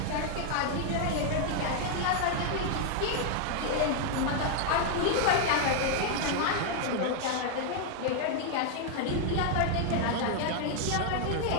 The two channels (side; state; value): both; different; correlation 0.00